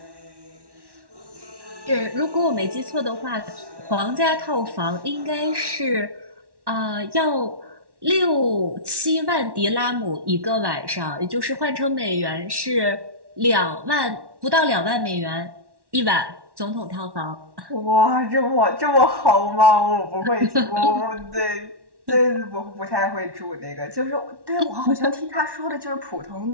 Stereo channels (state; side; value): late; left; 1.1 ms